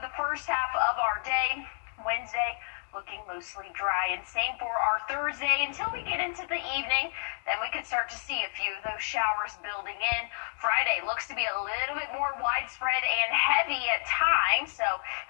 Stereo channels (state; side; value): silent; right; digital silence